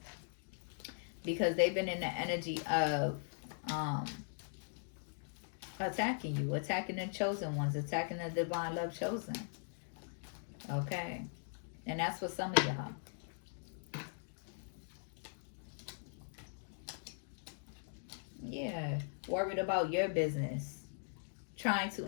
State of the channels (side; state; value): right; silent; digital silence